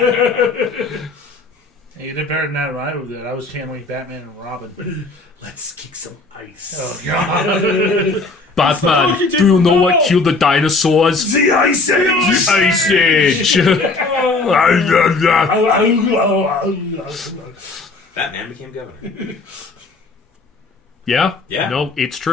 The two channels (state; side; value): quieter; right; 3.6 dB